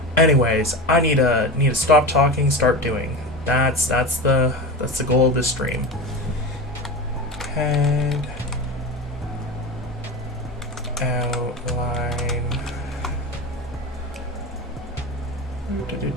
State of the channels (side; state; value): both; normal; correlation 0.26